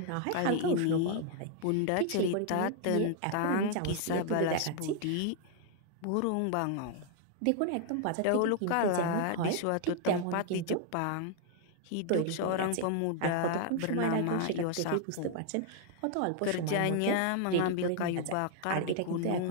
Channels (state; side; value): different; both; correlation 0.00